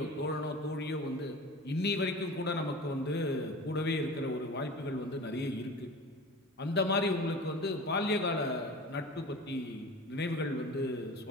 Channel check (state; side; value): normal; both; correlation 0.36